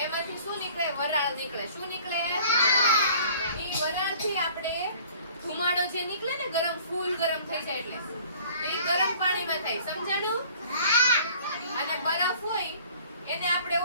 એમાંથી શું નીકળે? વરાળ નીકળે. શું નીકળે? ઈ વરાળથી આપણે ધુમાડો જે નીકળે ને ગરમ ફૂલ ગરમ થઈ જાય એટલે એ ગરમ પાણીમાં થાય. સમજાણું? અને બરફ હોય એને આપણે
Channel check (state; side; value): inverted; both; correlation -0.51